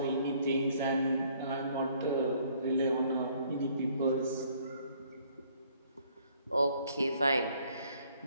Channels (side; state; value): both; inverted; correlation -0.63